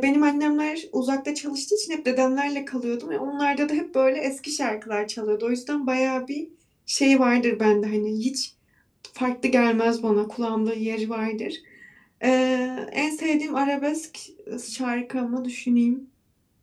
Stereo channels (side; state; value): both; identical; correlation 1.00